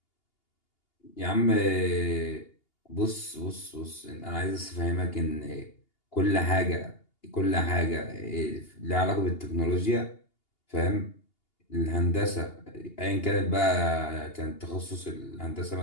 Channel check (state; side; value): late; right; 2.8 ms